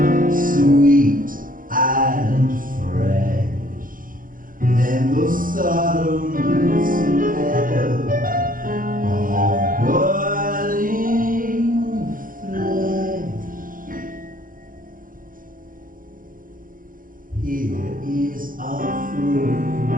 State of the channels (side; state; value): left; late; 0.40 ms